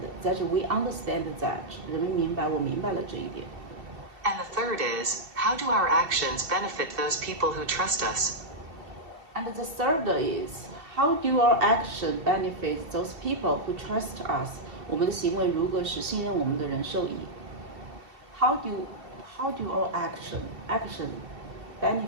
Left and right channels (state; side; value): late; left; 2.7 ms